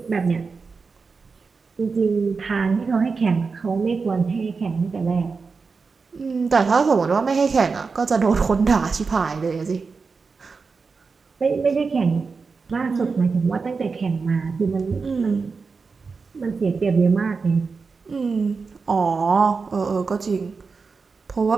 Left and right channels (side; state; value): left; quieter; 4.7 dB